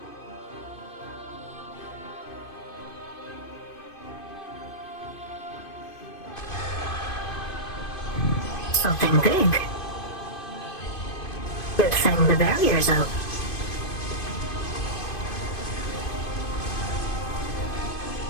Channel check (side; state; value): right; late; 2.5 ms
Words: Something big. Good thing the barrier's up.